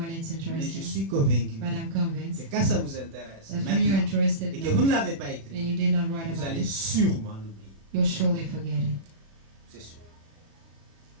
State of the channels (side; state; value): left; late; 36 ms